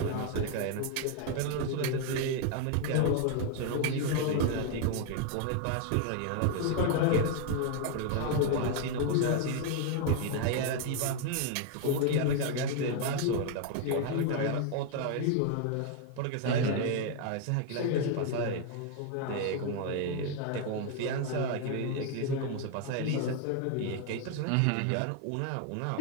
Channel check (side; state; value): both; different; correlation 0.00